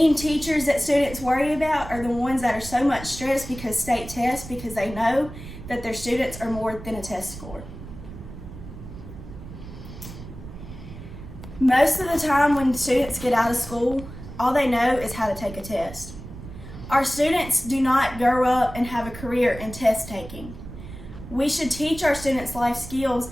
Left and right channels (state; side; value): noise; right; rumble, 13 dB below the sound